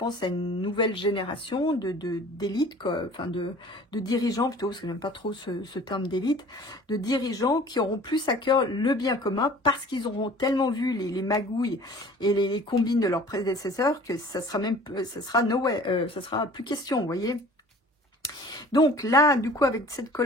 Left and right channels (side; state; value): both; normal; correlation 0.47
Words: à une nouvelle génération d'élite, enfin de dirigeants plutôt, parce que j'aime pas trop ce terme d'élite, de dirigeants qui auront plus à cœur le bien commun parce qu'ils auront tellement vu les magouilles et les combines de leurs prédécesseurs que ça sera plus question, vous voyez. Donc là, du coup, avec cette